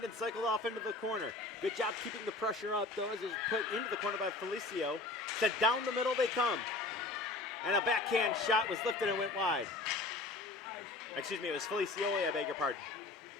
and cycled off into the corner. Good job keeping the pressure up, though, as it was put into the corner by Felicio. Sent down the middle they come. And a backhand shot was lifted and went wide. Excuse me, it was Felicioli, I beg your pardon.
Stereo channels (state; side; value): quieter; right; 3.2 dB